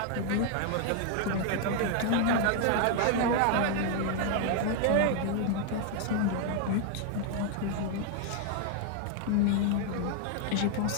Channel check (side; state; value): both; different; correlation 0.00